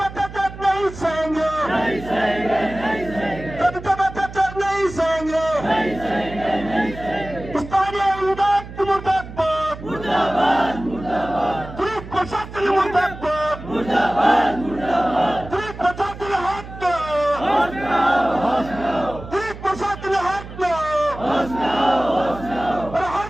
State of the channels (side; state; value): right; noise; hum, 13 dB below the sound